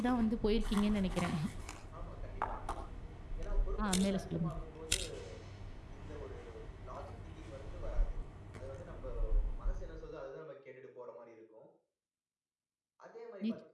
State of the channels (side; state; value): both; identical; correlation 1.00